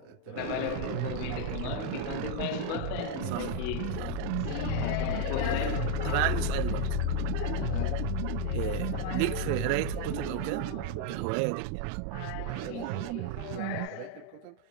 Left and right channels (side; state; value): both; different; correlation 0.00